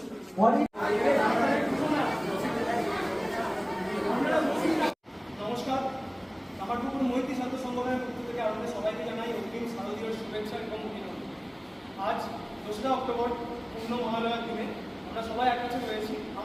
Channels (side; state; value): both; identical; correlation 1.00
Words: নমস্কার, কামারপুকুর মৈত্রী ছাত্র সংগঠনের পক্ষ থেকে আমাদের সবাইকে জানাই অগ্রিম শারদীয় শুভেচ্ছা এবং অভিনন্দন। আজ 2রা অক্টোবর পূর্ণ মহালয়ার দিনে আমরা সবাই এক কাছে রয়েছি।